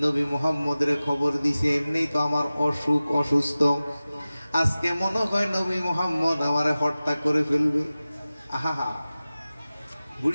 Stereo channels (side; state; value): both; inverted; correlation -0.97